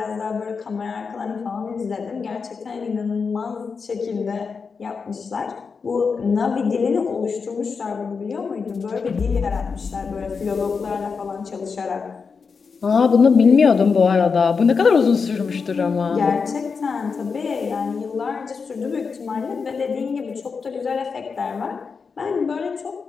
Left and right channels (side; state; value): right; quieter; 5.3 dB